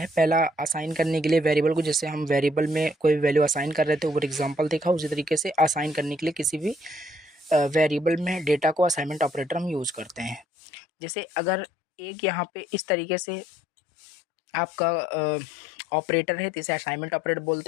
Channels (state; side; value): drops out; right; at 10.5 s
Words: पहला असाइन करने के लिए वेरिएबल को, जैसे हम वेरिएबल में कोई वैल्यू असाइन कर रहे थे, ऊपर एग्जांपल देखा, उसी तरीके से असाइन करने के लिए किसी भी वेरिएबल में डेटा को असाइनमेंट ऑपरेटर हम यूज़ करते हैं। जैसे अगर एक यहाँ पे इस तरीके से आपका ऑपरेटर है तो इसे असाइनमेंट ऑपरेटर